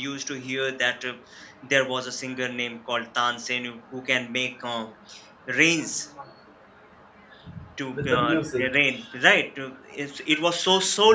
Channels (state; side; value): identical; both; correlation 1.00